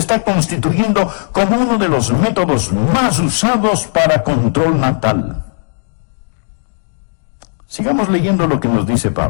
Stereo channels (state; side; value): silent; right; digital silence